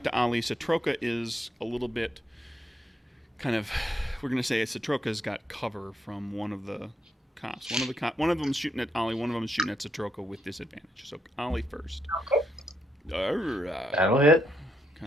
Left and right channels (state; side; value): normal; both; correlation 0.78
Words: to Ollie. Satroka is a little bit kind of. We're gonna say Satroka's got cover from one of the cops. One of them's shooting at Ollie. One of them is shooting at Satroka with disadvantage. So Ollie first. Okay. All right. That'll hit.